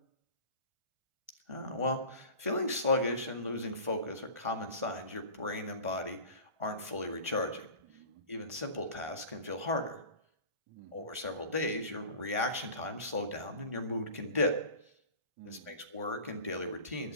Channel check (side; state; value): left; late; 1.4 ms